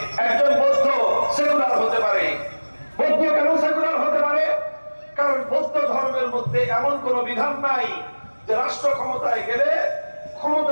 একজন বৌদ্ধ সেকুলার হতে পারে। বৌদ্ধ কেন সেকুলার হতে পারে? কারণ বৌদ্ধ ধর্মের মধ্যে এমন কোন বিধান নাই যে রাষ্ট্র ক্ষমতায় গেলে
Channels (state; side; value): inverted; both; correlation -1.00